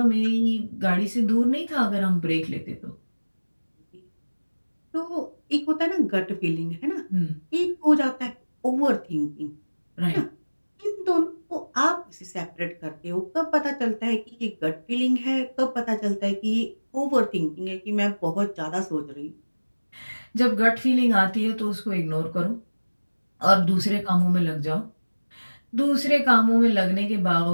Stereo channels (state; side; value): inverted; both; correlation -1.00